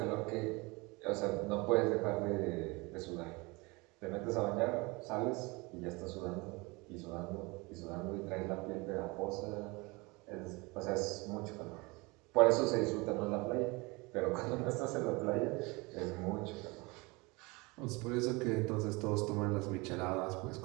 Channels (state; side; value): quieter; left; 25.5 dB